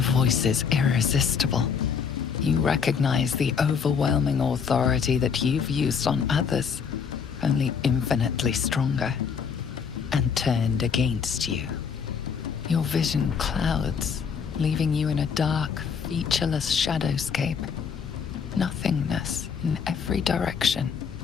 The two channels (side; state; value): right; quieter; 6.5 dB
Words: voice is irresistible. You recognize the overwhelming authority that you've used on others, only infinitely stronger, and turned against you. Your vision clouds, leaving you in a dark, featureless shadowscape. Nothingness in every direction.